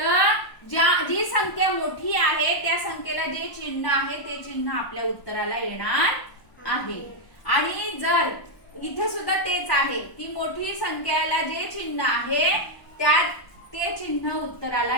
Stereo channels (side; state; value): right; late; 1.0 ms